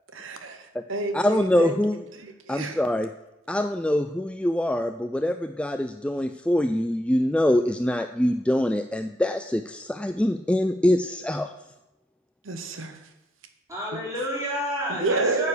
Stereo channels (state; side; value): normal; both; correlation 0.79